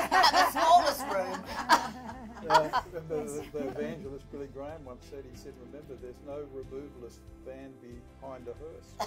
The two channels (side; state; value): both; identical; correlation 1.00